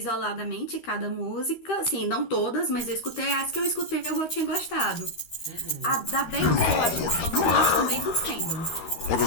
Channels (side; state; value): right; late; 13 ms